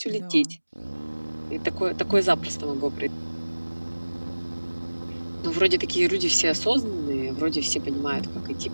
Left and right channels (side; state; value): both; inverted; correlation -1.00